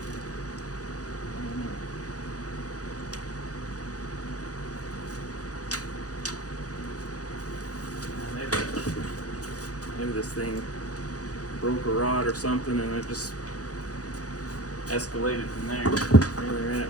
Maybe this thing broke a rod or something and it just escalated from there. Maybe they ran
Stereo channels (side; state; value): right; late; 0.67 ms